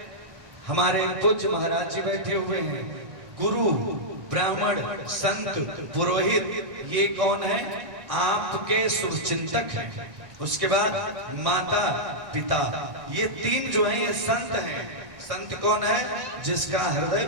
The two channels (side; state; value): left; late; 1.6 ms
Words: हमारे पूज्य महाराज जी बैठे हुए हैं। गुरु, ब्राह्मण, संत, पुरोहित, ये कौन है? आपके शुभचिंतक हैं। उसके बाद माता, पिता, ये तीन जो है ये संत हैं। संत कौन है? जिसका हृदय